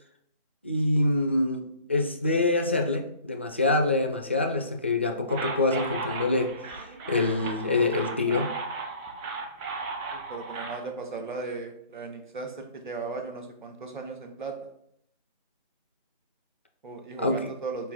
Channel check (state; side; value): inverted; both; correlation -0.50